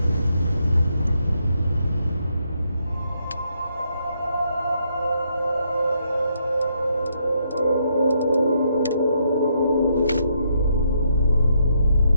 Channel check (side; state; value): both; inverted; correlation -0.76